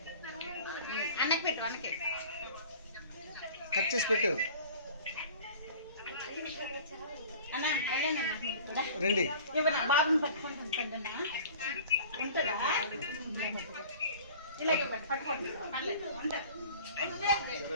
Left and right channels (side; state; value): both; inverted; correlation -0.44